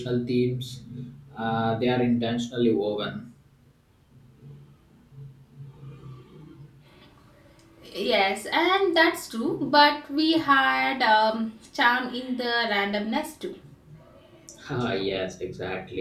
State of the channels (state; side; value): identical; both; correlation 1.00